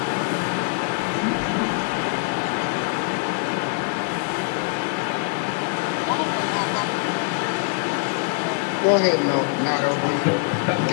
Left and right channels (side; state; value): right; quieter; 33.9 dB